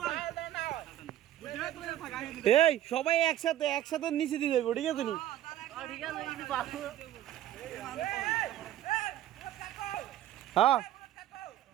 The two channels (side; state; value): left; quieter; 12.7 dB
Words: এই সবাই একসাথে নিচে দিয়ে যাবো ঠিক আছে নি হ্যাঁ